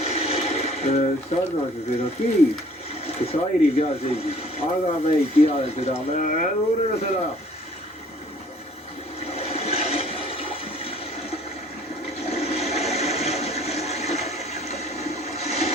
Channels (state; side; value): normal; both; correlation 0.55